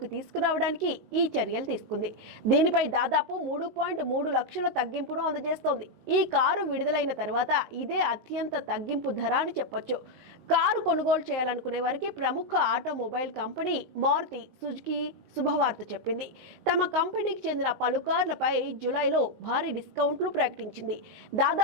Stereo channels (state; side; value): late; left; 19 ms